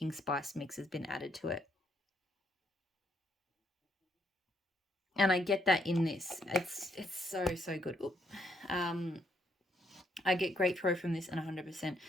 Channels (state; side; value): normal; both; correlation 0.73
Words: spice mix has been added to it. And I get that in this. It's so good. Oop. I get great throw from this and 100%.